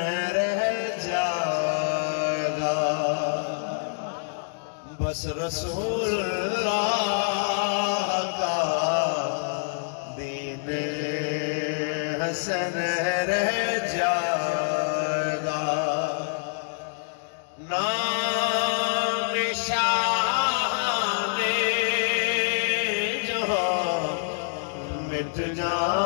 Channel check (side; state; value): right; silent; digital silence